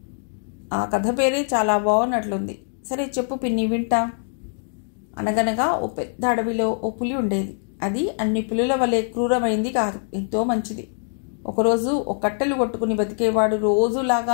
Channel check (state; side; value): silent; right; digital silence